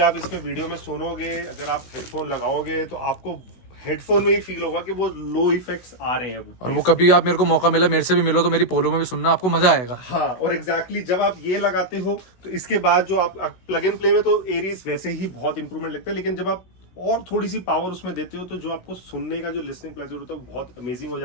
इसमें वीडियो में सुनोगे, अगर आप हेडफोन लगाओगे तो आपको हेडफोन में ही फील होगा कि वो लो इफेक्ट्स आ रहे हैं। और वो कभी आप मेरे को मौका मिला, मेरे से भी मिलो तो मेरी पोलो में भी सुनना, आपको मजा आएगा। हाँ, और एग्जैक्टली जब आप ये लगाते हो तो इसके बाद जो आप प्लग एंड प्ले में तो एरीज वैसे ही बहुत इंप्रूवमेंट लगता है, लेकिन जब आप और थोड़ी सी पावर उसमें देते हो, तो जो आपको सुनने का जो लिसनिंग प्लेजर होता है वो बहुत अमेजिंग हो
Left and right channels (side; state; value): right; late; 16 ms